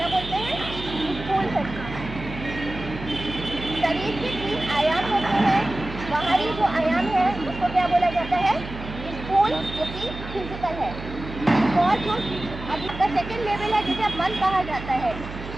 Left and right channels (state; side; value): noise; right; hum, 11 dB below the sound